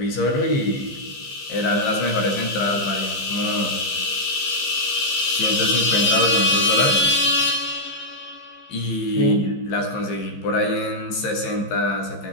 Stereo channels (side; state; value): right; late; 15 ms